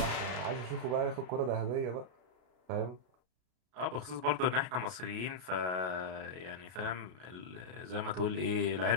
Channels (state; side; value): late; left; 33 ms